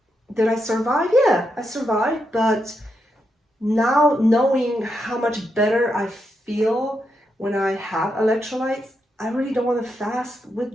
did I survive? Yeah, I survived. But now knowing how much better I feel when I have electrolytes, I really don't want to fast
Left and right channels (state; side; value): normal; both; correlation 0.83